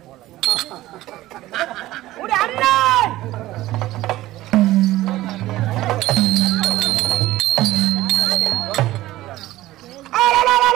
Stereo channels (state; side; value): quieter; left; 16.2 dB